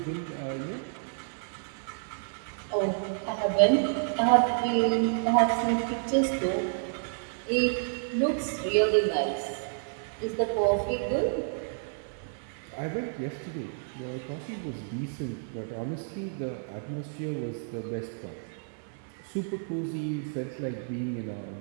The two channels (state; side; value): silent; left; digital silence